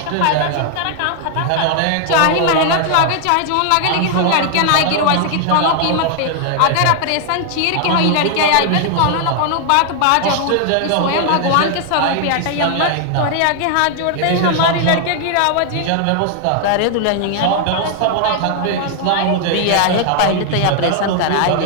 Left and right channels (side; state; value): both; different; correlation 0.00